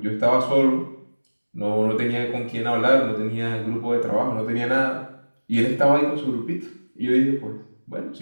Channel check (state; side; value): inverted; both; correlation -1.00